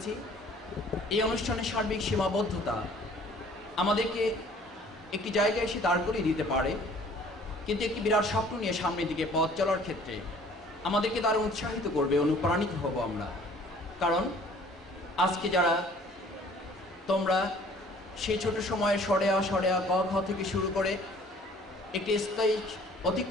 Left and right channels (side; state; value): both; normal; correlation 0.54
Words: এই অনুষ্ঠানের সার্বিক সীমাবদ্ধতা আমাদেরকে একটি জায়গায় এসে দাঁড় করিয়ে দিতে পারে, কিন্তু একটি বিরাট স্বপ্ন নিয়ে সামনের দিকে পথ চলার ক্ষেত্রে আমাদেরকে দারুণ উৎসাহিত করবে, অনুপ্রাণিত হব আমরা। কারণ আজকে যারা তোমরা সেই ছোট সময়ে সরেয়া ক খ থেকে শুরু করে একটি স্টেজ